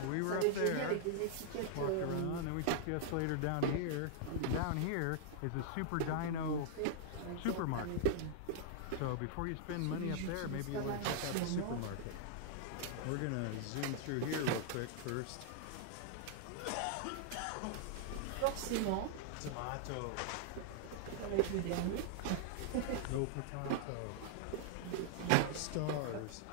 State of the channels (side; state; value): both; different; correlation -0.01